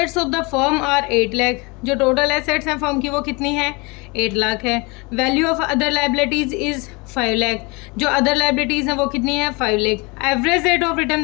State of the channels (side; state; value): right; quieter; 27.7 dB